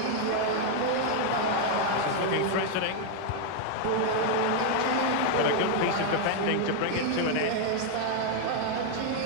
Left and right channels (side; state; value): both; different; correlation 0.00